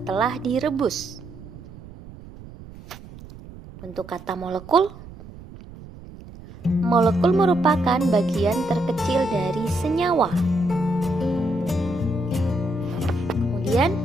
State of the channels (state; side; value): noise; right; rumble, 17 dB below the sound